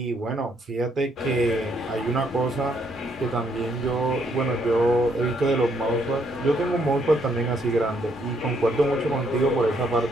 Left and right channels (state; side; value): normal; both; correlation 0.71